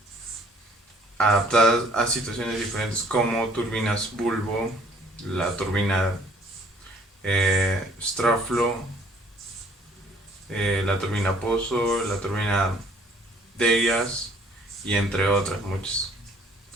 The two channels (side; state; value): both; normal; correlation 0.59